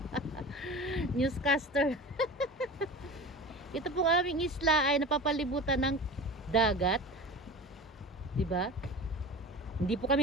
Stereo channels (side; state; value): both; normal; correlation 0.34